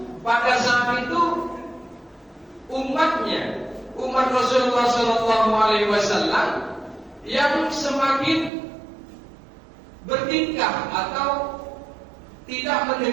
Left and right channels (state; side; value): drops out; left; at 8.5 s